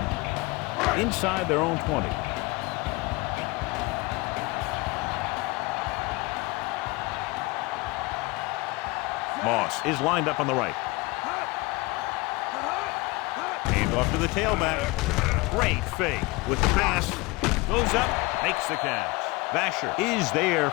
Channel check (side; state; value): right; quieter; 23.6 dB